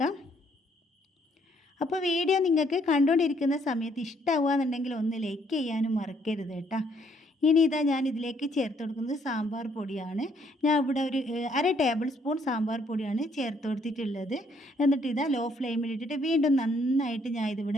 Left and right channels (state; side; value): normal; both; correlation 0.68